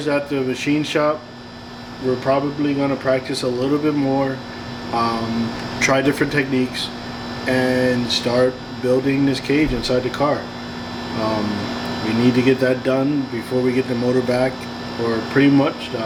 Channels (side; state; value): both; identical; correlation 1.00